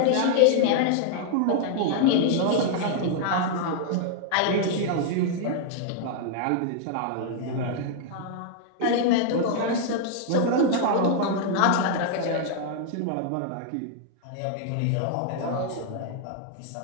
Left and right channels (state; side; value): different; both; correlation 0.00